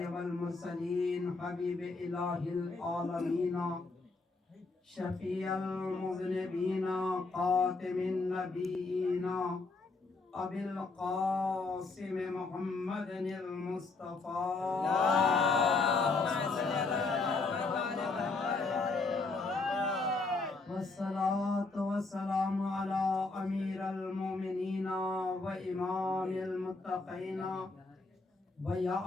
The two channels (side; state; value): right; quieter; 3.7 dB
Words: والمرسلين حبيب إله العالمين شفيع المذنبين خاتم النبيين أبي القاسم محمد المصطفى والصلاة والسلام على أمير المؤمنين وإمام المتقين